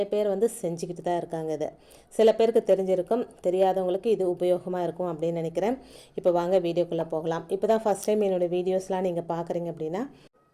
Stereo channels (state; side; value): identical; both; correlation 1.00